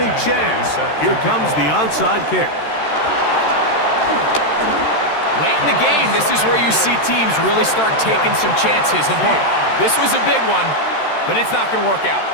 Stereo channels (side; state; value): right; late; 13 ms